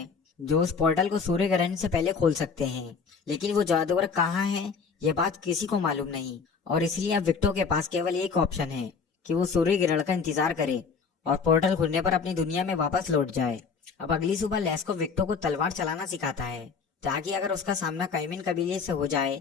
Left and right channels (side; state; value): right; quieter; 5.5 dB